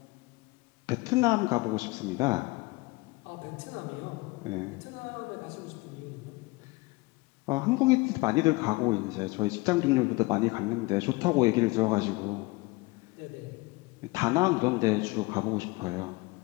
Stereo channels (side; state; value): right; quieter; 23.6 dB